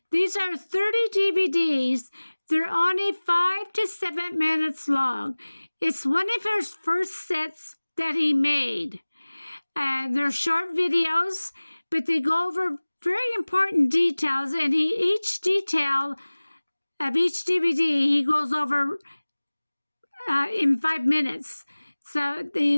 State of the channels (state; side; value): inverted; both; correlation -1.00